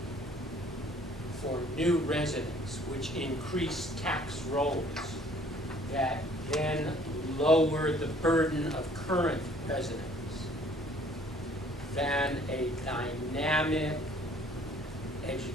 for new residents, which increase tax rolls that then lower the burden of current residents, than a dynamic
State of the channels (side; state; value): both; normal; correlation 0.57